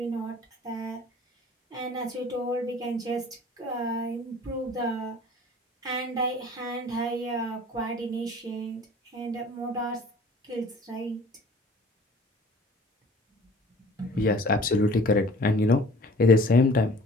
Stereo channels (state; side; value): normal; both; correlation 0.48